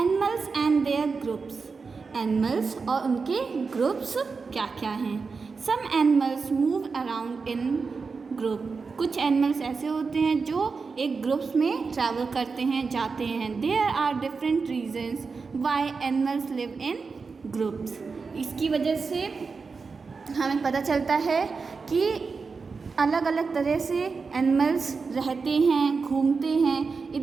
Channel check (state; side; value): quieter; left; 4.8 dB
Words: and their groups. Animals और उनके ग्रुप्स क्या क्या हैं। Some animals move around in group. कुछ एनिमल्स ऐसे होते हैं जो एक ग्रुप्स में ट्रैवल करते हैं, जाते हैं। There are different reasons why animals live in groups. इसकी वजह से हमें पता चलता है कि अलग अलग तरह से एनिमल्स रहते हैं, घूमते हैं,